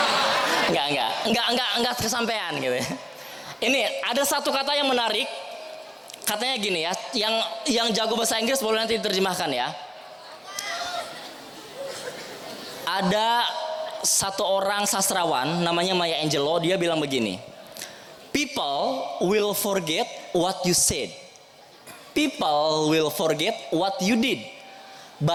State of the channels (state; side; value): identical; both; correlation 1.00